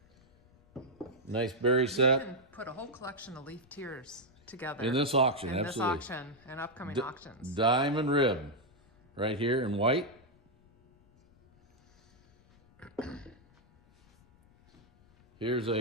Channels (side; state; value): left; noise; rumble, 29 dB below the sound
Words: Nice berry You set. can put a whole collection of leaf tears together. In this auction, in absolutely. this auction and upcoming auctions. Diamond rib. Right here in white. Here's